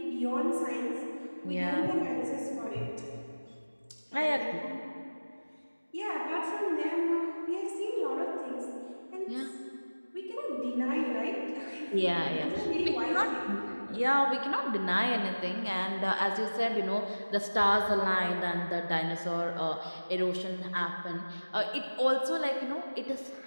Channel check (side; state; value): both; inverted; correlation -1.00